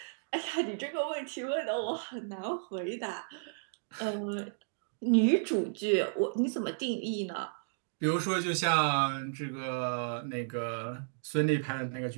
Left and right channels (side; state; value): left; silent; digital silence